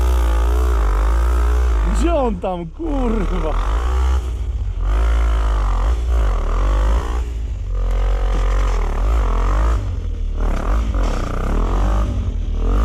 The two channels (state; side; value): identical; both; correlation 1.00